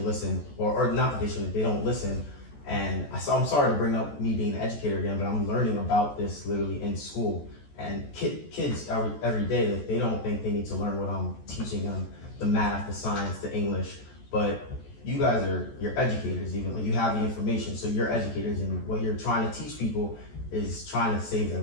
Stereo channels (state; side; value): late; right; 14 ms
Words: listen, or not that they shouldn't, they don't listen. And I'm sorry to bring up me being an educator again, but I'm learning about this literally in school. And kids every day, like, they don't think they need to learn what I'm teaching them, the math, the science, the English. But you guys you're educators, even like you have the information, so you're educators, and what you're trying to teach people is trying to save their